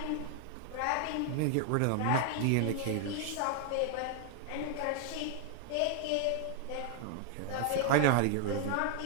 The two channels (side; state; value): both; different; correlation 0.00